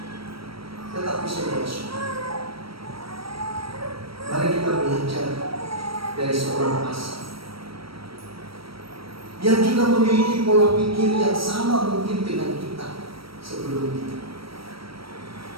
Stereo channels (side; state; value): left; late; 0.75 ms